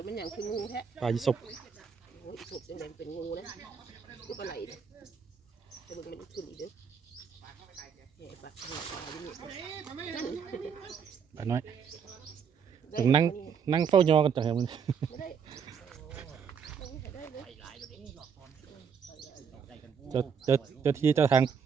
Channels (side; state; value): left; quieter; 6.8 dB